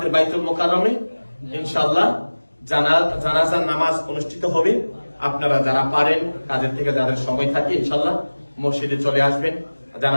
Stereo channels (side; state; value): both; inverted; correlation -1.00